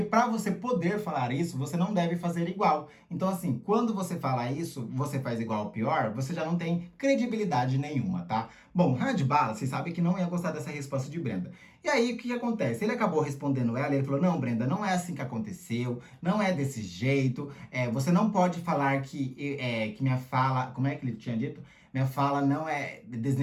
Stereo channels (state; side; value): identical; both; correlation 1.00